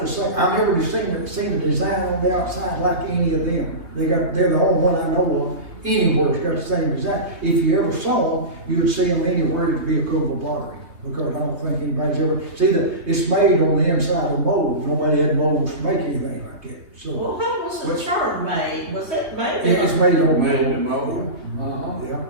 same. I've never seen a design on the outside like any of them. They're the only one I know of anywhere that's got the same design. If you ever saw them, you would see them anywhere. It'd be a Cookeville Pottery, because I don't think anybody's ever. See, it's made on the inside of molds. Nobody had molds to make anything like that. So Well, how was the churn made? Was it made? it's made on Made mold. in mold.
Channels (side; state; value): left; late; 3.4 ms